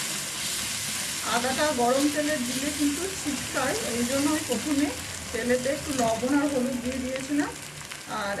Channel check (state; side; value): identical; both; correlation 1.00